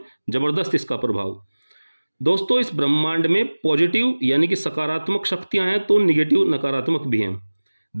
ज़बरदस्त इसका प्रभाव। दोस्तों, इस ब्रह्मांड में पॉजिटिव यानी कि सकारात्मक शक्तियां हैं तो निगेटिव नकारात्मक भी हैं।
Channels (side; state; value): both; inverted; correlation -1.00